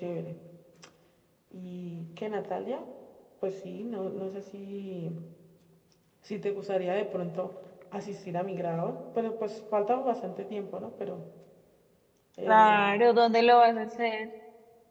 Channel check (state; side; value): identical; both; correlation 1.00